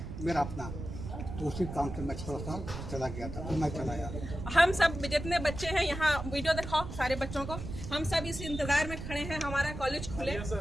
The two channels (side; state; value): right; noise; rumble, 8 dB below the sound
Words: मेरा अपना, तो उसी काम से मैं थोड़ा सा चला गया था, तो मैं चला आया। हम सब जितने बच्चे हैं यहाँ, वीडियो दिखाओ सारे बच्चों को, हम सब इस इंतजार में खड़े हैं हमारा कॉलेज खुले